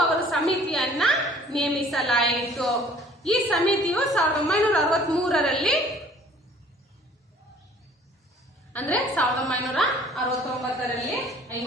ಅವರು ಸಮಿತಿಯನ್ನ ನೇಮಿಸಲಾಯಿತು. ಈ ಸಮಿತಿಯು 1963ರಲ್ಲಿ ಅಂದ್ರೆ 1959ರಲ್ಲಿ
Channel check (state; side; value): normal; both; correlation 0.53